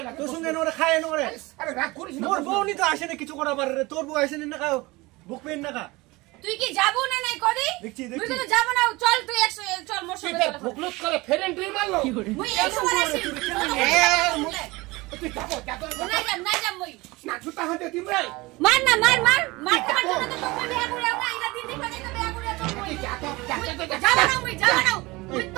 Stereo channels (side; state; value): left; quieter; 22.3 dB